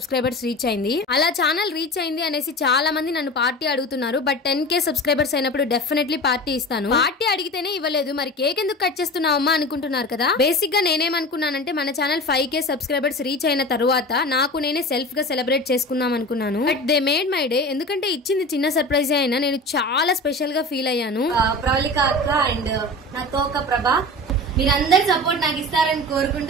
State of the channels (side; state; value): both; normal; correlation 0.32